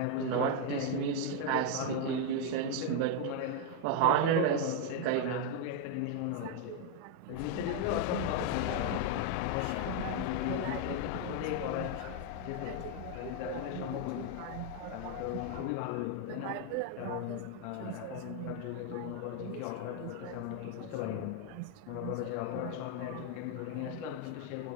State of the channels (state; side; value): different; both; correlation 0.01